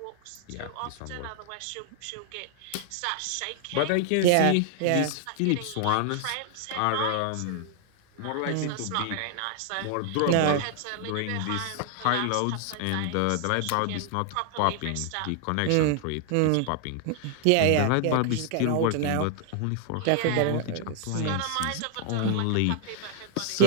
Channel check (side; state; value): both; different; correlation 0.00